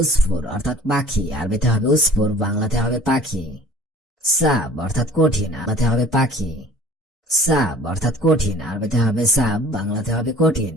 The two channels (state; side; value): normal; both; correlation 0.49